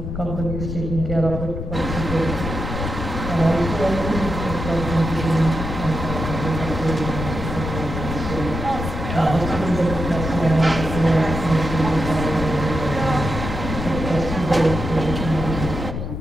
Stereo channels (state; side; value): noise; left; rumble, 5 dB below the sound